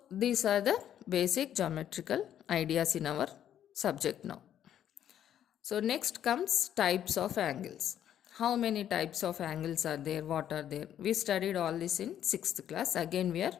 these are the basic geometrical ideas in our subject now. So next comes types of angles. How many types of angles are there, what are there? We studied all this in 6th class. Again we are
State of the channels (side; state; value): right; quieter; 10.4 dB